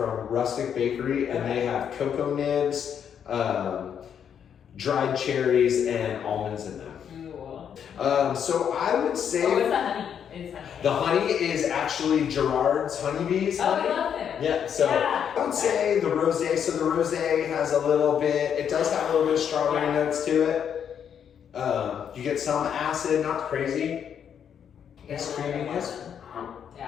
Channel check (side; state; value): right; quieter; 8.3 dB